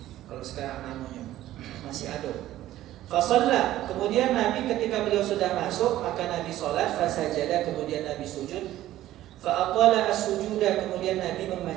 Kalau sekarang namanya masih ada. Fasalla, kemudian Nabi ketika beliau sudah masuk, maka Nabi sholat, fasajada, kemudian Nabi sujud, fa'atala as-sujuda, kemudian Nabi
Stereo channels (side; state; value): left; quieter; 14.1 dB